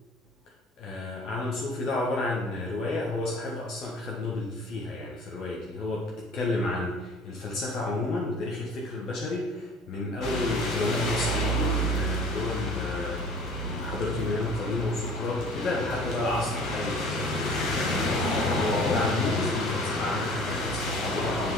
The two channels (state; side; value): normal; both; correlation 0.47